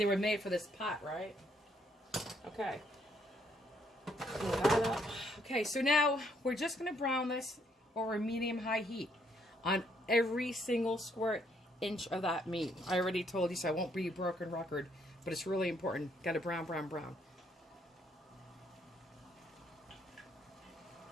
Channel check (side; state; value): both; normal; correlation 0.71